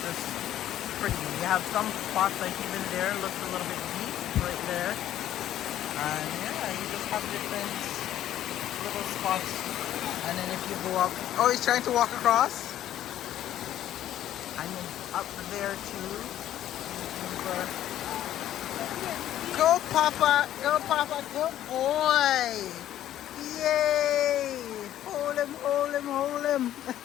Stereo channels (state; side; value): quieter; right; 12.1 dB